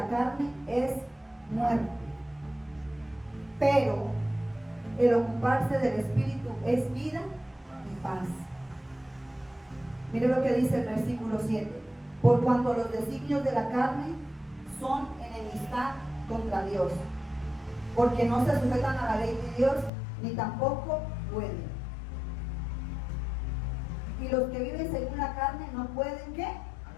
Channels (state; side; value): drops out; right; at 19.9 s